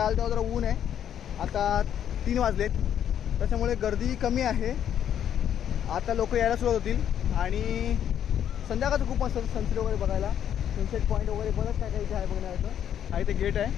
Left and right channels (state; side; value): quieter; right; 9.7 dB